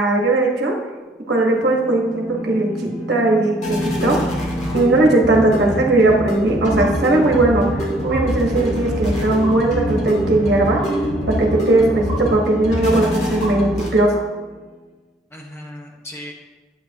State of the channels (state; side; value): normal; both; correlation 0.61